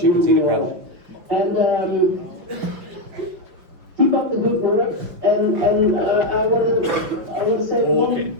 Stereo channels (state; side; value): late; left; 5.8 ms